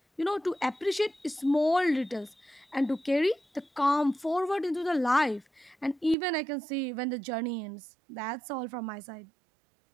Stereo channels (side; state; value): left; drops out; at 6.2 s